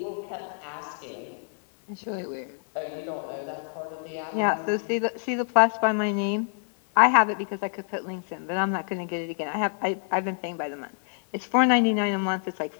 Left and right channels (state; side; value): silent; right; digital silence